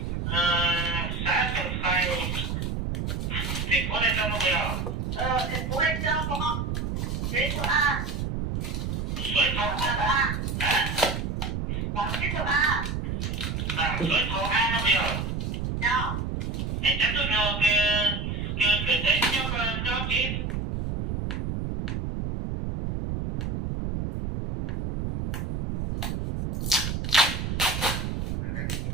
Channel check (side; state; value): right; noise; rumble, 2 dB below the sound